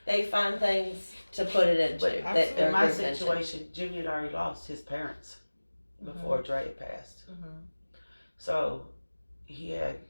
find things to put it into. But in my situation, Jimmy had already lost his parents before Dre passed. So he had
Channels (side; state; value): both; inverted; correlation -1.00